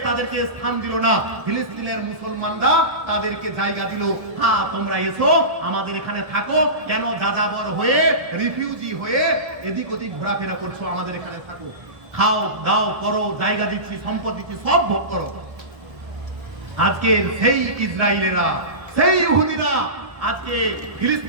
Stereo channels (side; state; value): left; late; 1.3 ms